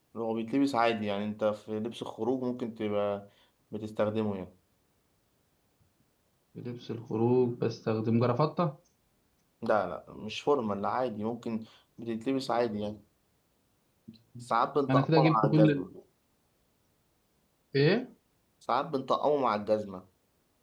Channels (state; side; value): identical; both; correlation 1.00